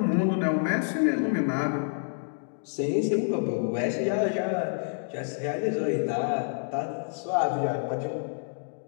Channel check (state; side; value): silent; right; digital silence